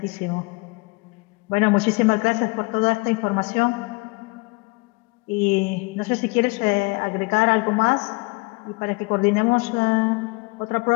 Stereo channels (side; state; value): right; quieter; 27.1 dB